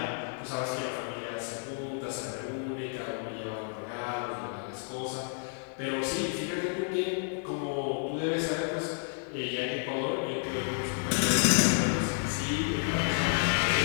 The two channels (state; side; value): silent; right; 57 dB below the other